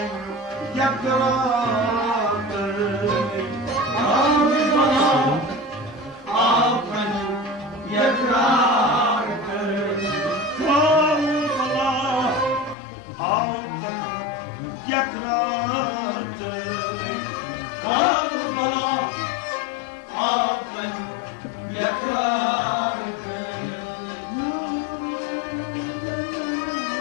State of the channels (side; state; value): right; drops out; at 12.8 s